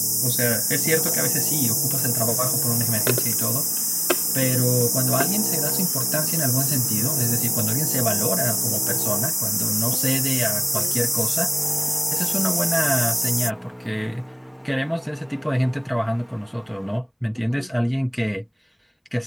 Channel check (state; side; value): identical; both; correlation 1.00